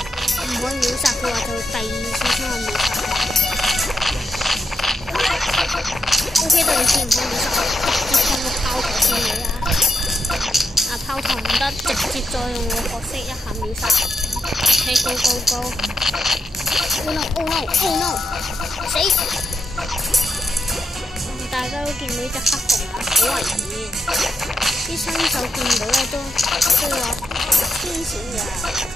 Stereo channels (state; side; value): normal; both; correlation 0.79